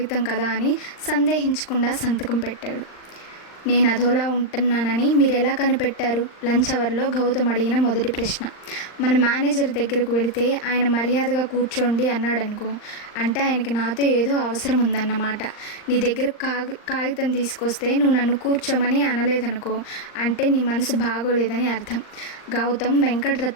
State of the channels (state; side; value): late; right; 39 ms